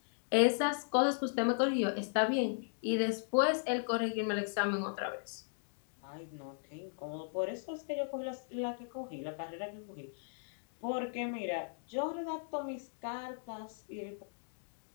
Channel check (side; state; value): right; silent; digital silence